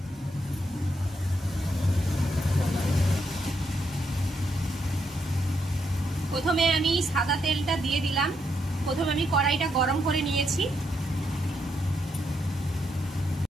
প্রথমে আমি সাদা তেলটা দিয়ে দিলাম। প্রথমে আমি কড়াইটা গরম করে নিয়েছি।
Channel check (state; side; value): normal; both; correlation 0.78